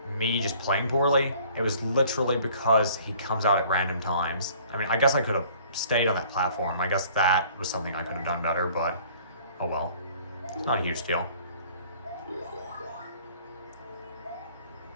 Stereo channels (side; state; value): both; inverted; correlation -0.53